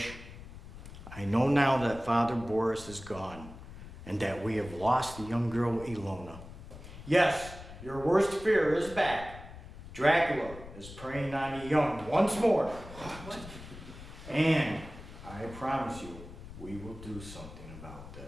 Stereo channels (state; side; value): noise; left; rumble, 14 dB below the sound